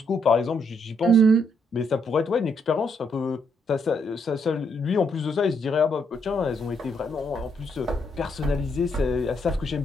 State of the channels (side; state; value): both; normal; correlation 0.75